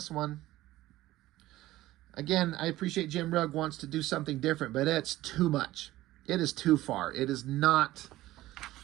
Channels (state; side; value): quieter; left; 16.2 dB